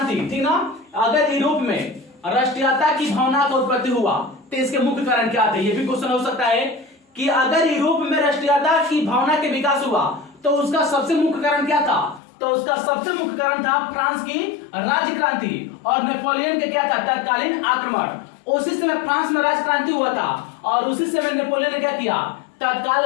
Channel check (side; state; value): right; drops out; at 12.2 s